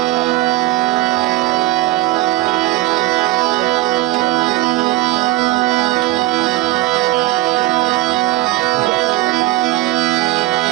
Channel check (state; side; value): quieter; left; 18.3 dB